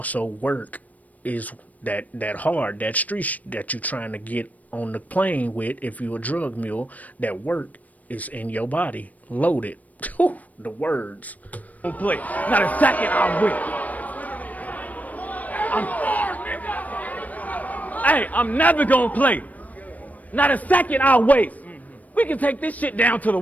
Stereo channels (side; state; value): right; late; 0.074 ms